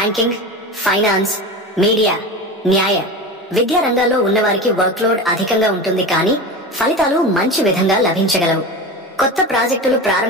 ఫైనాన్స్, మీడియా, న్యాయ, విద్యా రంగాల్లో ఉన్నవారికి వర్క్లోడ్ అధికంగా ఉంటుంది, కానీ ఫలితాలు మంచి విధంగా లభించగలవు. కొత్త ప్రాజెక్టులు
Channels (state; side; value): normal; both; correlation 0.27